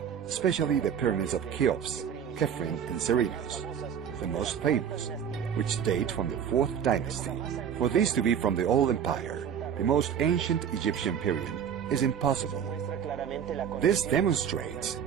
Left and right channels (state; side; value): quieter; left; 8.2 dB